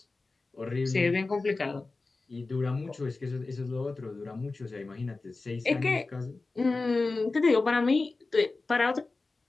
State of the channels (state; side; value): quieter; right; 3.6 dB